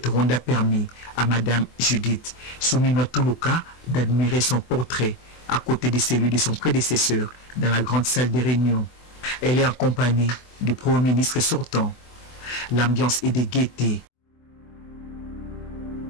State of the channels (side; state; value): right; late; 24 ms